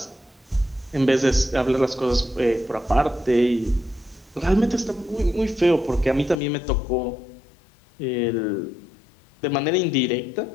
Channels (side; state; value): right; drops out; at 6.4 s